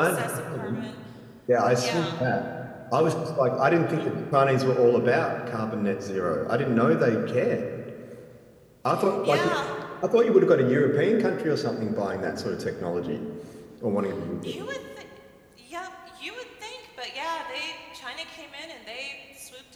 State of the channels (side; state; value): both; identical; correlation 1.00